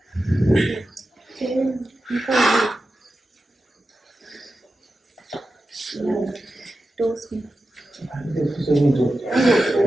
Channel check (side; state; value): both; normal; correlation 0.92